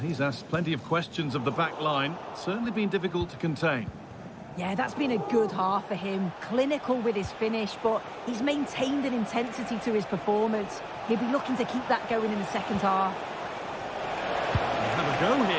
asked plenty of questions of the back line. Certainly been difficult to contain. Yeah, that's been a good half for him. Clinical with his finish, but he's maintained an intensity to his performance. He'll be looking to keep that going in the second half. Have a go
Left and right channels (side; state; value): both; identical; correlation 1.00